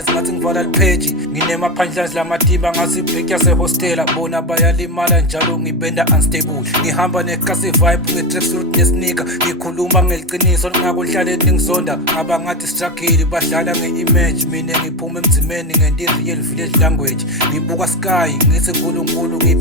ngathi ngivala lipheji. Nginema-punchlines lamatimba ngathi ibreak yase-hostela. Bona bayalimala njalo ngibenda unstable. Ngihamba nekasi vibe nge-tracksuit nesneaker. Ngikhuluma ngeliqiniso ngakudlaleni ngizonda. Abangathi struggle badlala nge-image. Mina ngiphuma emzimeni ngenti real village language. Ngibuka sky ngithi nkulunkulu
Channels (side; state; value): both; normal; correlation 0.16